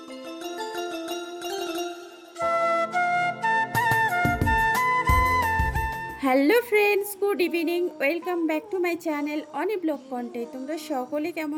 Hello friends, good evening, welcome back to my channel Oni blog content. তোমরা সকলে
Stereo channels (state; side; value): identical; both; correlation 1.00